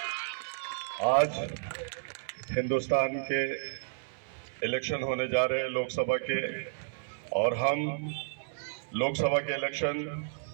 आज हिंदुस्तान के इलेक्शन होने जा रहे हैं लोकसभा के, और हम लोकसभा के इलेक्शन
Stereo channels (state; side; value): silent; left; 57 dB below the other